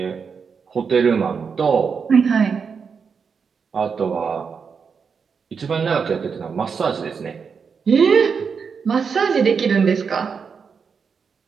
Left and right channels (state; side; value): quieter; left; 5.9 dB